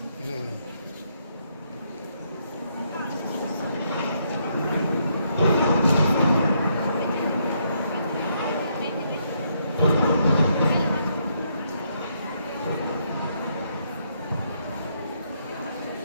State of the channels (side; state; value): both; inverted; correlation -0.75